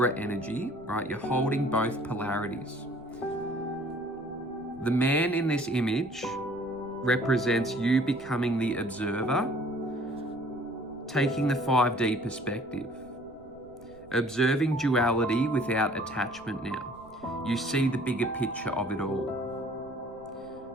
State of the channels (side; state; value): right; noise; rumble, 24 dB below the sound